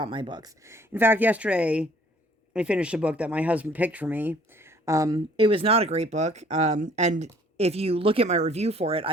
my books. In fact, yesterday I finished a book that my husband picked for me. It was not a great book. And if you look at my review for it,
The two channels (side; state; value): both; normal; correlation 0.57